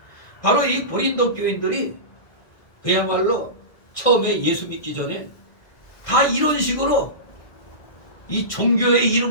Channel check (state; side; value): late; right; 1.5 ms